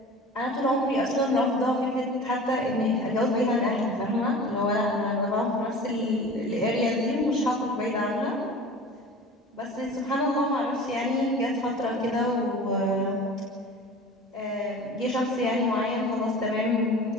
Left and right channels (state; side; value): normal; both; correlation 0.38